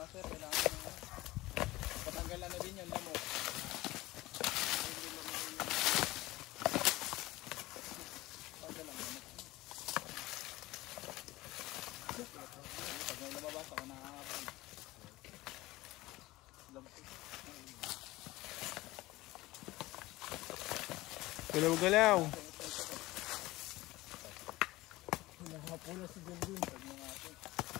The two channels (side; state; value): right; quieter; 18.9 dB